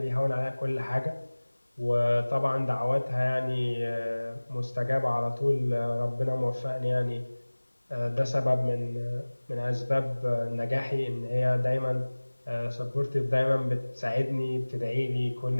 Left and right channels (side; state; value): both; inverted; correlation -1.00